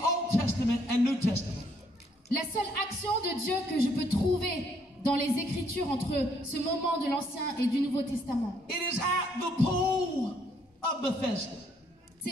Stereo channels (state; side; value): normal; both; correlation 0.69